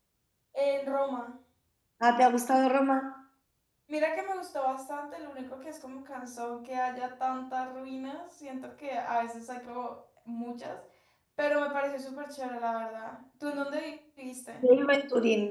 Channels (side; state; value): both; identical; correlation 1.00